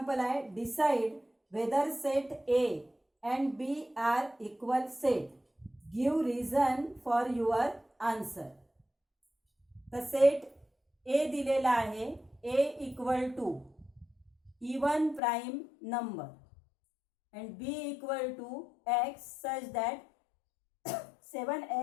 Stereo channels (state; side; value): drops out; right; at 15.2 s